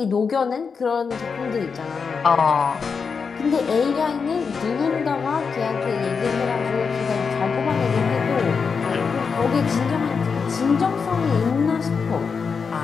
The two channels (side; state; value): right; quieter; 5.6 dB